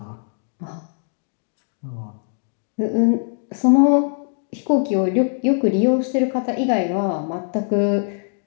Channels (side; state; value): right; silent; digital silence